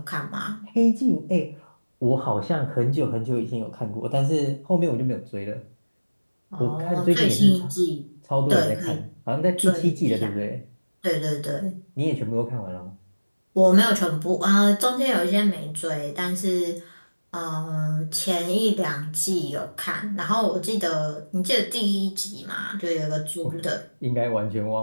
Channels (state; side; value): inverted; both; correlation -1.00